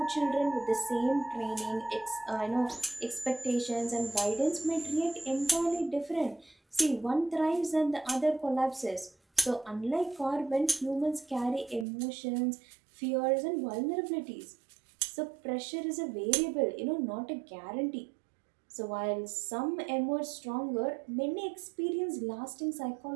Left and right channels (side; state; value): left; drops out; at 11.9 s